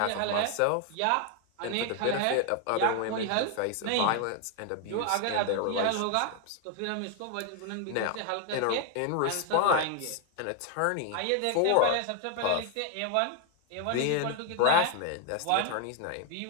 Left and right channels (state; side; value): different; both; correlation 0.01